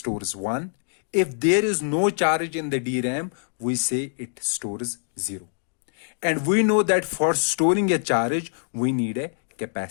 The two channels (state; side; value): silent; right; digital silence